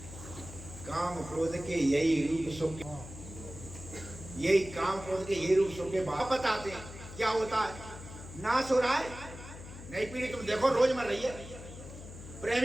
काम क्रोध के यही रूप सुख, यही काम क्रोध के यही रूप सुख के बाप बताते हैं क्या होता है। नाश हो रहा है, नई पीढ़ी तुम देखो रोज मर रही है।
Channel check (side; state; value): left; noise; hum, 13 dB below the sound